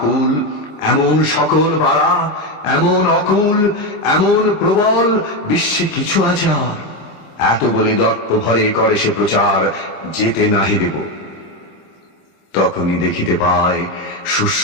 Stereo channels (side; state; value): right; late; 26 ms